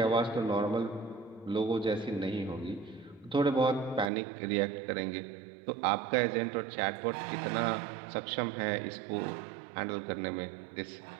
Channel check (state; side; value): drops out; left; at 4.1 s